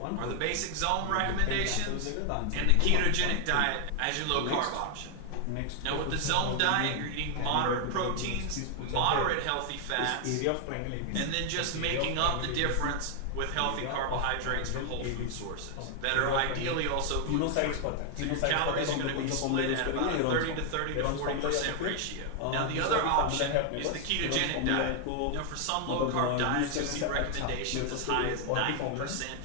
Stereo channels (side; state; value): both; different; correlation 0.00